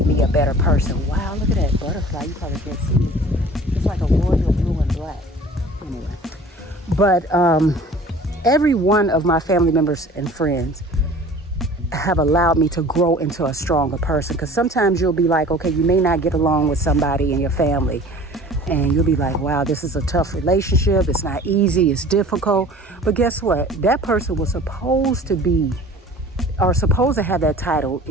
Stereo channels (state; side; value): normal; both; correlation 0.45